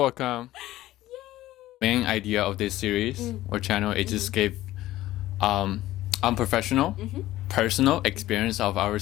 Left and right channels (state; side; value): quieter; right; 15.5 dB